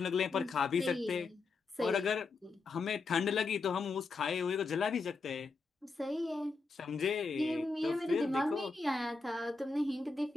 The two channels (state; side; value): quieter; right; 4.0 dB